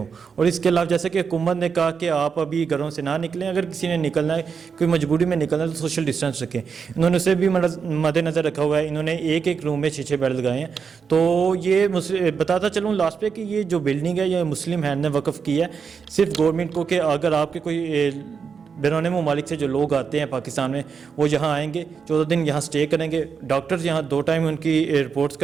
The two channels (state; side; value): quieter; left; 6.1 dB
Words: اور اس کے علاوہ جیسے کہ حکومت نے کہا کہ آپ ابھی گھروں سے نہ نکلیں, اگر کسی نے نکلنا ہے, کوئی مجبوری میں نکلنا ہے تو سوشل ڈسٹینس رکھیں. انہوں نے اسے بھی مد نظر رکھا ہوا ہے. انہوں نے ایک روم میں 6 بیڈ لگائے ہیں. تو یہ بتاتا چلوں لاسٹ پہ کہ یہ جو بلڈنگ ہے یہ مسلم ہینڈ نے وقف کی ہے صرف گورنمنٹ کو, کہ اگر آپ کے کوئی بیرون ممالک سے جو لوگ آتے ہیں پاکستان میں وہ یہاں آئیں گے, 14 دن یہاں سٹے کریں گے, ڈاکٹرز یہاں 2 ٹائم ان کی رپورٹس